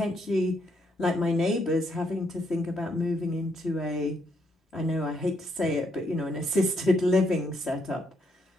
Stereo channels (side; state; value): both; normal; correlation 0.75